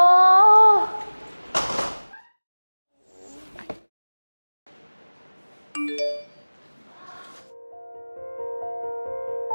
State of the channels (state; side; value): inverted; both; correlation -1.00